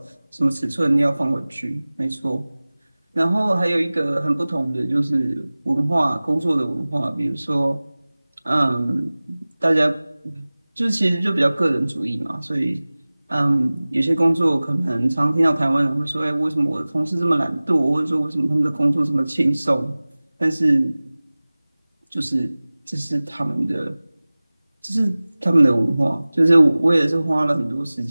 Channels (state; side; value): inverted; both; correlation -0.99